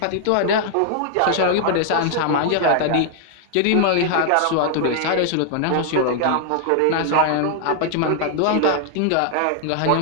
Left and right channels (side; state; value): both; different; correlation 0.00